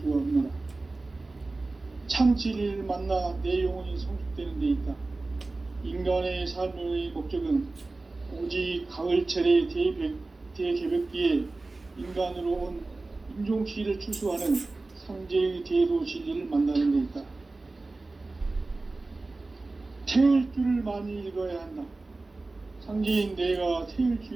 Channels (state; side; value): quieter; left; 3.3 dB